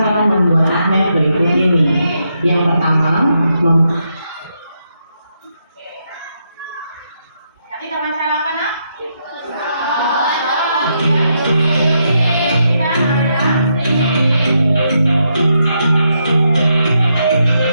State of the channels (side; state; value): both; inverted; correlation -0.80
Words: membuat magnet berikut ini. Yang pertama, nanti kamu cara apa nak?